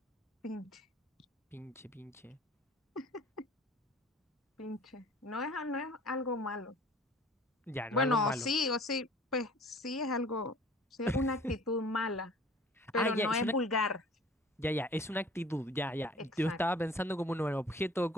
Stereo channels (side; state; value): both; normal; correlation 0.49